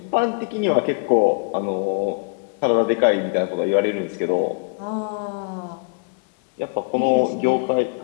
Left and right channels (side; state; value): right; quieter; 35.9 dB